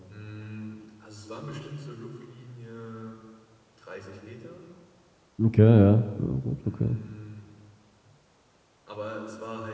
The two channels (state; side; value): identical; both; correlation 1.00